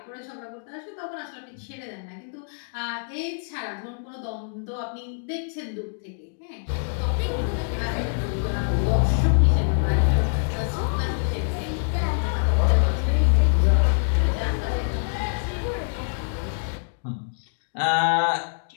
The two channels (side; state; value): right; silent; digital silence